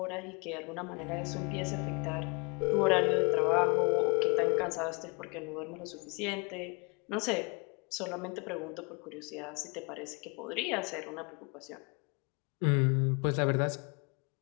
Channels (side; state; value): right; quieter; 31.2 dB